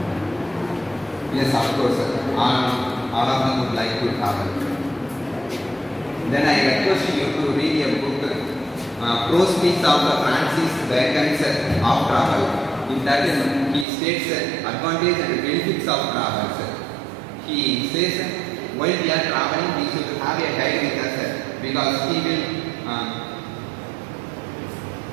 Yes, of course. All of them would like to travel. Then I request you to read a book, Prose Speaks of Francis Bacon's of Travel. In that he states advantages and benefits of travel. He says while we are traveling we should have a guide with us because he will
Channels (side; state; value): left; drops out; at 13.9 s